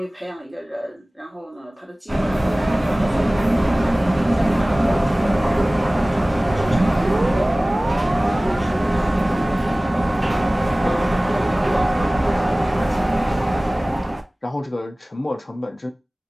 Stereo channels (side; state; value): both; normal; correlation 0.98